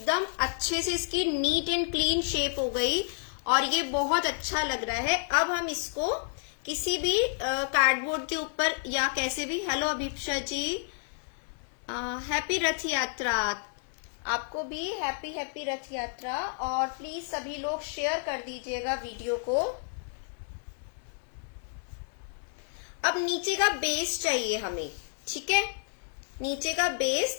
अच्छे से इसकी नीट एंड क्लीन शेप हो गई और ये बहुत अच्छा लग रहा है। अब हम इसको किसी भी कार्डबोर्ड के ऊपर या कैसे भी, हेलो अभिप्सा जी, हैप्पी रथ यात्रा। आपको भी हैप्पी हैप्पी रथ यात्रा। और प्लीज सभी लोग शेयर कर दीजिएगा वीडियो को। अब नीचे का बेस चाहिए हमें, ठीक है, नीचे का बेस,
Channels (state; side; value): silent; right; 56 dB below the other